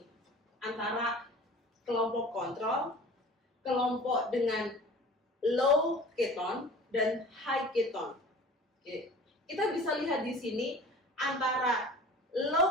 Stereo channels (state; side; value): normal; both; correlation 0.42